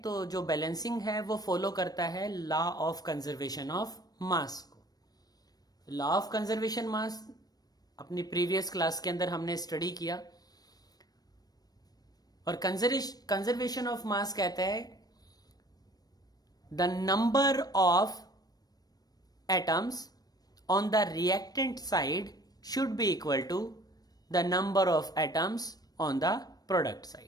तो जो बैलेंसिंग है वो फॉलो करता है law of conservation of mass को। लॉ ऑफ कंजर्वेशन मास अपनी प्रीवियस क्लास के अंदर हमने स्टडी किया। और कंजर्वेशन ऑफ मास कहता है the number of atoms on the reactant side should be equal to the number of atoms on the product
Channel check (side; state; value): right; late; 0.19 ms